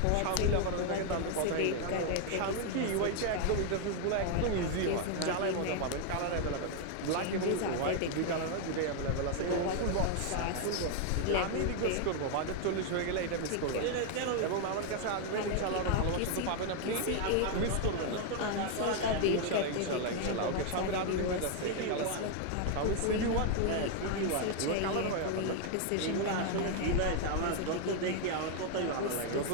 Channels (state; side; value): different; both; correlation 0.00